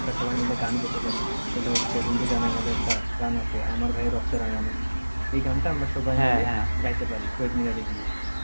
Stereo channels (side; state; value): both; inverted; correlation -1.00